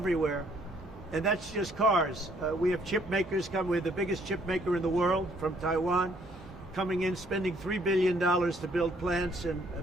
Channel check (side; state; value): both; normal; correlation 0.65